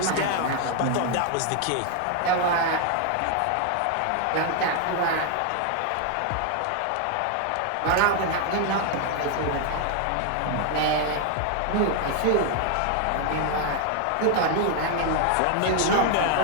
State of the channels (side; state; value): both; different; correlation 0.00